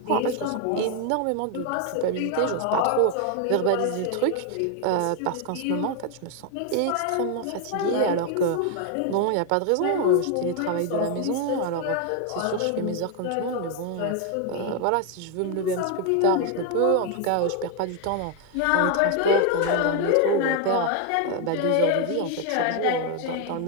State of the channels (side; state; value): both; different; correlation 0.01